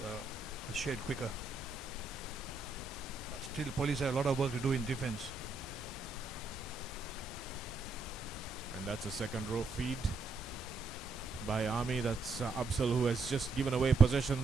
a shade quicker. But still, police have a lot of work to do in defense. And that's a second row feed by Army. That's Absal, who has just given away possession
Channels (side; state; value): left; quieter; 3.7 dB